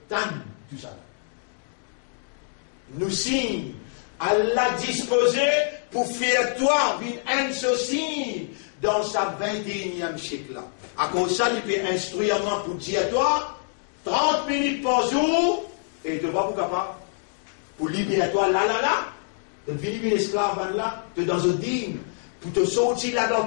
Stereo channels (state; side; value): silent; right; digital silence